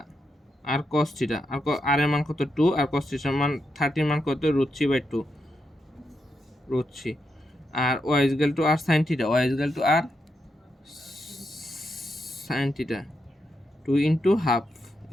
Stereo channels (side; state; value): both; normal; correlation 0.84